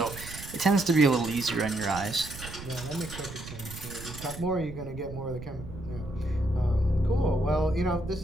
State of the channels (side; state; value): right; noise; rumble, 12 dB below the sound